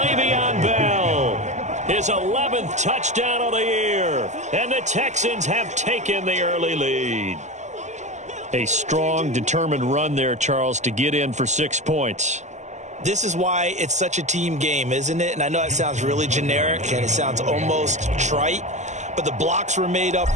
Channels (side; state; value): left; late; 0.34 ms